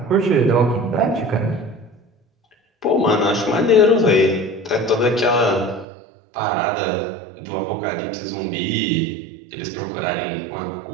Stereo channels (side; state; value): left; drops out; at 5.9 s